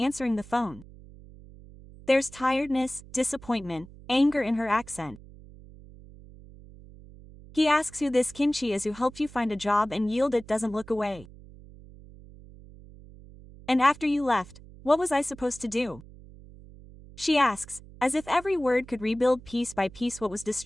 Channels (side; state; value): right; noise; hum, 19 dB below the sound